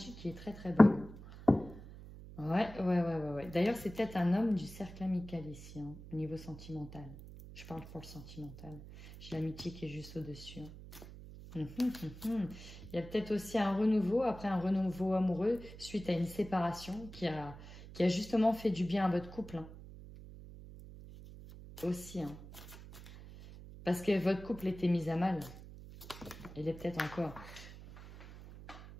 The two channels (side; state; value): right; noise; hum, 15 dB below the sound